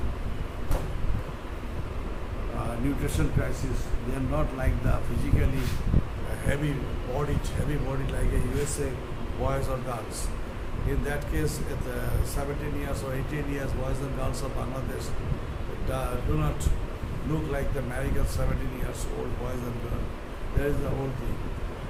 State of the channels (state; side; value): identical; both; correlation 1.00